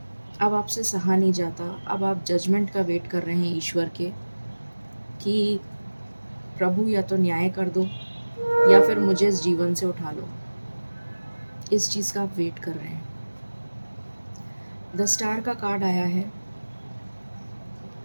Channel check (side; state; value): both; inverted; correlation -1.00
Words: अब आपसे सहा नहीं जाता। अब आप जजमेंट का वेट कर रहे हैं ईश्वर के कि प्रभु या तो न्याय कर दो या फिर मुझे इस जीवन से उठा लो। इस चीज़ का आप वेट कर रहे हैं। द स्टार का कार्ड आया है।